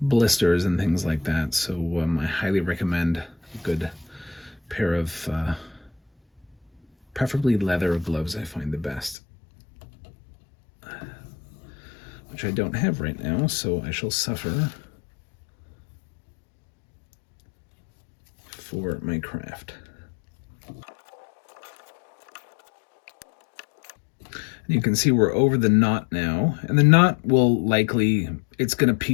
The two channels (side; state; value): right; drops out; at 9.2 s